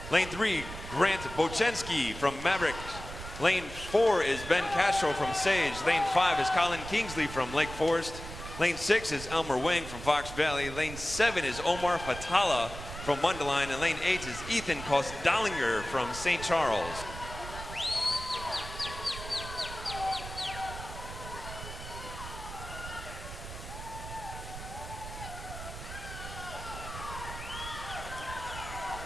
Lane 3, Grant Bochensky from Maverick. Lane 4 is Ben Castro from Sage. Lane 5 is Colin Kingsley from Lake Forest. Lane 6 is Elmer Wing from Fox Valley. Lane 7 is Omar Fatala from Mundelein. And lane 8 is Ethan Kostdalinger from St. Charles.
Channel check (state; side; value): noise; right; rumble, 11 dB below the sound